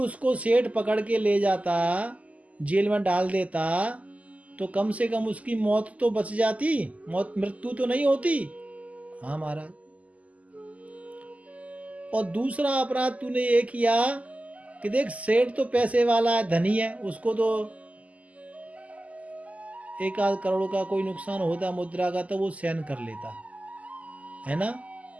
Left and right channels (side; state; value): left; late; 0.072 ms